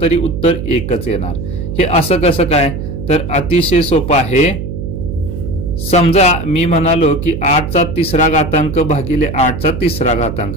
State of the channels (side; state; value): right; noise; hum, 6 dB below the sound